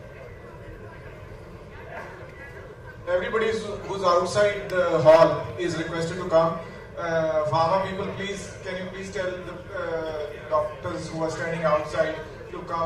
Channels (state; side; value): identical; both; correlation 1.00